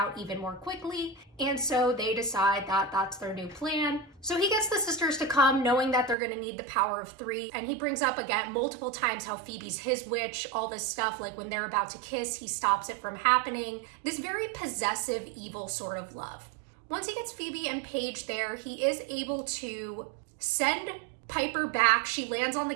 even more quickly. And so they decide that that's their new plan. So he gets the sisters to come knowing that they're going to need the power of 3. And he brings up again multiple times how Phoebe's his witch, all this stuff, like when they're about to kiss, he stops it from happening. This very possessive, evil sort of love. Once he gets Phoebe and Paige there, he is able to send Piper back. She lands on the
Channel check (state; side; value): drops out; left; at 6.2 s